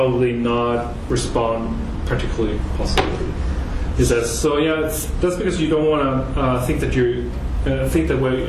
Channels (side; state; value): both; identical; correlation 1.00